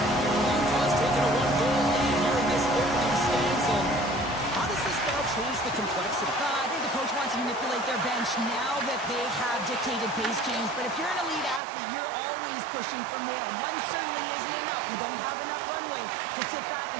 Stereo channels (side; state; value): left; drops out; at 11.6 s